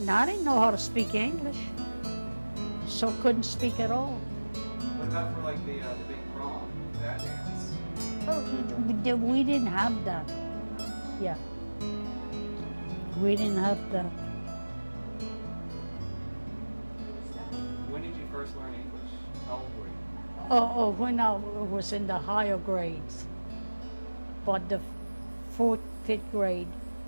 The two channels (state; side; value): inverted; both; correlation -1.00